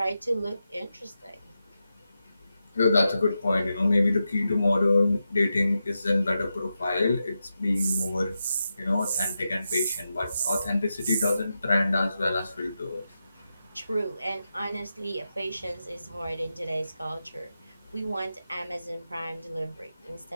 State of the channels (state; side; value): inverted; both; correlation -0.89